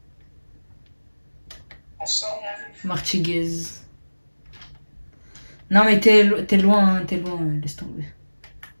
On sort, mon vieux. Martiguez. Non mais t'es loin, hein, laisse tomber.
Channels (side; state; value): both; inverted; correlation -1.00